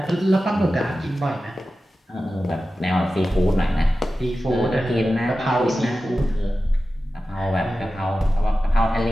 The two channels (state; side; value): normal; both; correlation 0.94